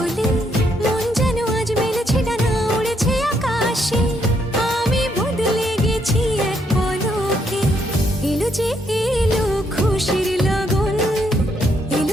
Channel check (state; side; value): normal; both; correlation 0.74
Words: মন যেন আজ মেলেছে ডানা, উড়েছে আকাশে, আমি বদলে গেছি এক পলকে। এলো যে এলো খুশির লগন,